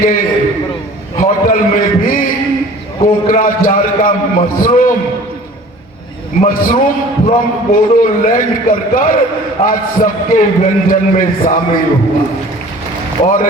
होटल में भी कोकराझार का मशरूम फ्रॉम बोडोलैंड कर आज सबके व्यंजन में शामिल हुआ। और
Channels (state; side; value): normal; both; correlation 0.46